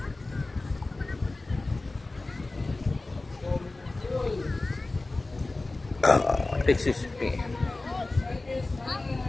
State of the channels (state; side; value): quieter; right; 3.1 dB